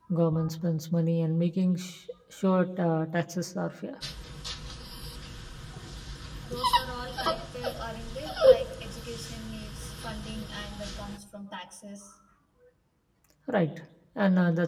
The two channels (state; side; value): identical; both; correlation 1.00